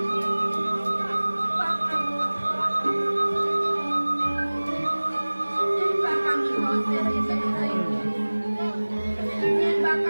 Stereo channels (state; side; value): inverted; both; correlation -1.00